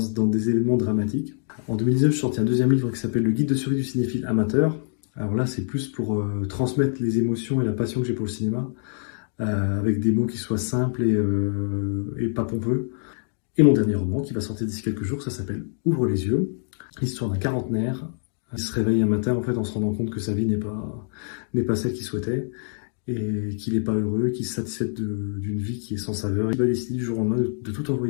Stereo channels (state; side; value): silent; right; digital silence